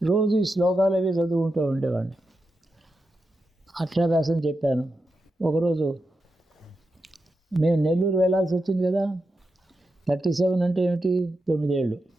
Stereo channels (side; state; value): both; normal; correlation 0.88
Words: రోజు ఈ శ్లోకాలు అవి చదువుకుంటూ ఉండేవాడిని. అక్షరాభ్యాసం చెప్పాను. ఒకరోజు మేము నెల్లూరు వెళ్ళాల్సి వచ్చింది కదా. 37 అంటే ఏమిటి? 9 ఏళ్ళు,